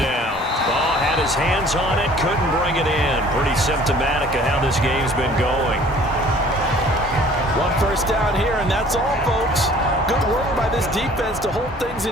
Ball had his hands on it, couldn't bring it in. Pretty symptomatic of how this game's been going. 1 first down here, and that's all, folks. Good work by this defense to hold things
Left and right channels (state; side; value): normal; both; correlation 0.52